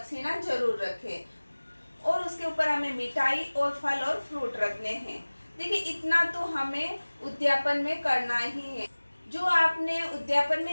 जरूर रखें, और उसके ऊपर हमें मिठाई और फल और फ्रूट रखने हैं। देखिए, इतना तो हमें उद्यापन में करना ही है। जो आपने उद्यापन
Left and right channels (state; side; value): inverted; both; correlation -1.00